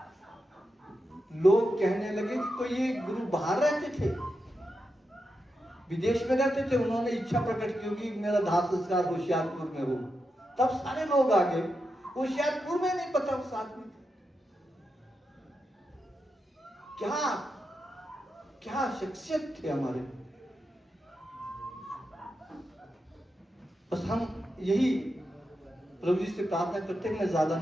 लोग कहने लगे कि कोई ये गुरु बाहर रहते थे, विदेश में रहते थे, उन्होंने इच्छा प्रकट की होगी मेरा दाह संस्कार होशियारपुर में हो। तब सारे लोग आ गए, होशियारपुर में नहीं पता उस आदमी को। क्या क्या शख्सियत थे हमारे। बस हम यही प्रभु जी से प्रार्थना करते हैं, मैं ज्यादा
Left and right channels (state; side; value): normal; both; correlation 0.87